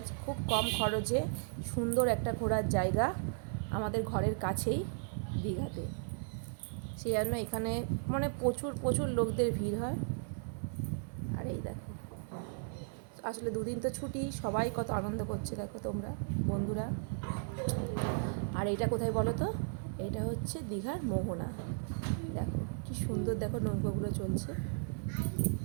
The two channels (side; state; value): left; silent; 54 dB below the other